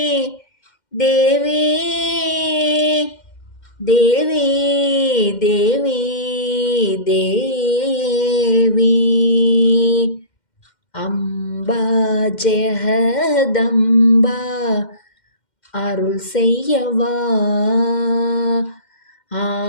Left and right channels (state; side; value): late; right; 2.1 ms